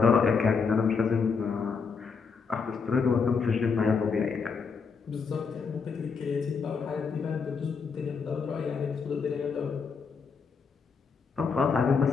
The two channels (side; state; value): right; quieter; 5.4 dB